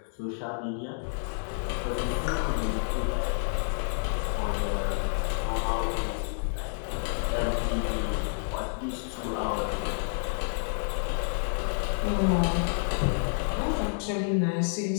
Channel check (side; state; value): right; silent; digital silence